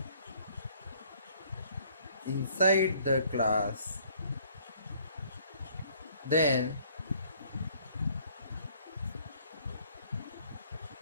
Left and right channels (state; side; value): inverted; both; correlation -0.61